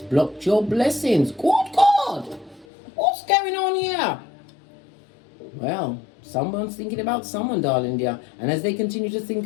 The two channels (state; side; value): drops out; right; at 2.7 s